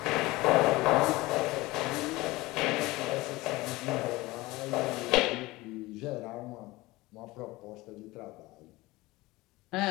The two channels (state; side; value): quieter; right; 20.4 dB